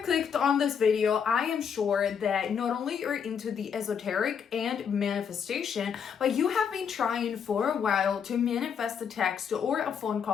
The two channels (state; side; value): quieter; right; 7.2 dB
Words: clicked on this video, I am sure that not only you're into the esoteric and manifestation, but you have been trying for a while to manifest a text or a phone